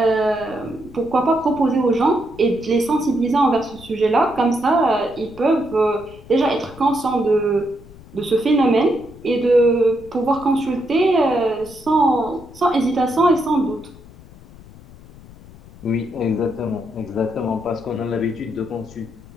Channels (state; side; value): noise; left; rumble, 20 dB below the sound